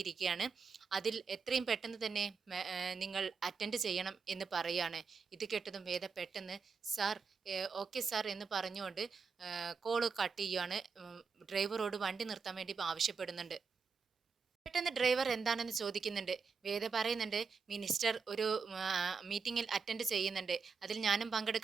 അതിൽ എത്രയും പെട്ടെന്ന് തന്നെ നിങ്ങൾ അറ്റൻഡ് ചെയ്യണം എന്ന് പറയുകയാണ്. ഇത് കേട്ടതും വേദ പെട്ടെന്ന് സാർ ഓക്കെ സാർ എന്ന് പറഞ്ഞുകൊണ്ട് കോള് കട്ട് ചെയ്യുകയാണ്. ഡ്രൈവറോട് വണ്ടി നിർത്താൻ വേണ്ടി ആവശ്യപ്പെടുന്നുണ്ട്. പെട്ടെന്ന് ഡ്രൈവർ എന്താണെന്ന് ചോദിക്കുന്നുണ്ട്. വേദ പറയുന്നുണ്ട്, മിനിസ്റ്റർ ഒരു മീറ്റിംഗിൽ അറ്റൻഡ് ചെയ്യുന്നുണ്ട്, അതിൽ ഞാനും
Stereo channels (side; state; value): left; quieter; 5.3 dB